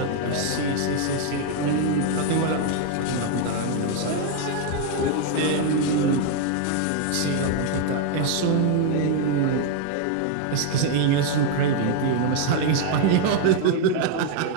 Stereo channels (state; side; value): different; both; correlation 0.00